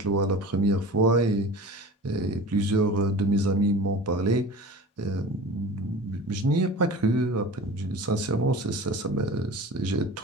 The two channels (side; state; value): both; normal; correlation 0.37